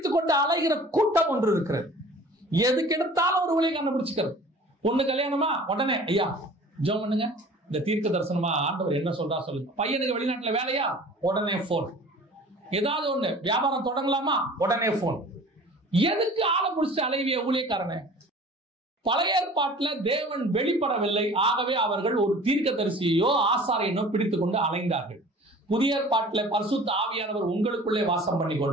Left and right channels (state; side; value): normal; both; correlation 0.45